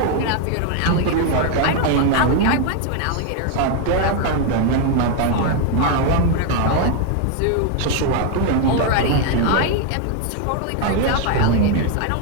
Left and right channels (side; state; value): both; different; correlation 0.00